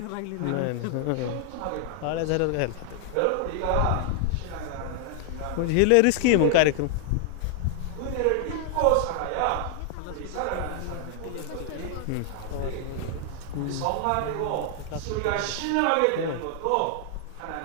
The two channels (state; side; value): different; both; correlation 0.00